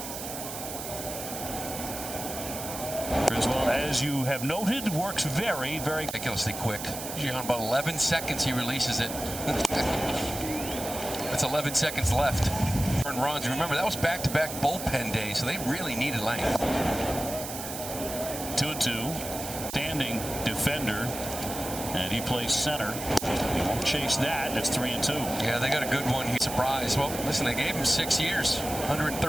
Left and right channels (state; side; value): noise; right; hiss, 8 dB below the sound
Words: Criswell, as you have noted, works very, very ridiculously quick. Usually on about 11 seconds he releases it. That's 11 seconds left. Runs. Remember, that was back-to-back bullpen days, so they really needed length. 2-2. Standing defender. And he plays center. He won't chase that. It's 3-2. Yeah, they got a good one. He's surprised. Well, listen, they gave him 6 years,